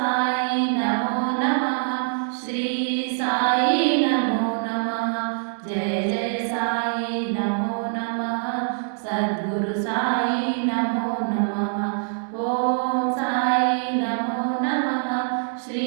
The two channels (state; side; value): silent; left; digital silence